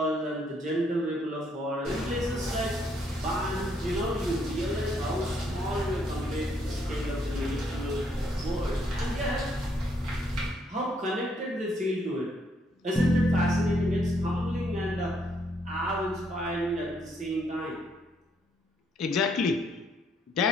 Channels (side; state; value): both; normal; correlation 0.71